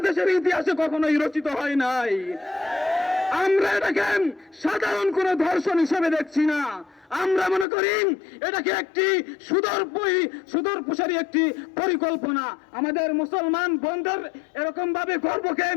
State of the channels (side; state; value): right; drops out; at 7.7 s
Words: ইতিহাসে কখনোই রচিত হয় নাই। আমরা এটাকে সাধারণ কোনো ধর্ষণ হিসেবে দেখছি না, আমরা মনে করি এটাকে একটি সুদূরপ্রসারী একটি পরিকল্পনা। আমাদের মুসলমান বন্ধুর এরকম ভাবে গর্বকে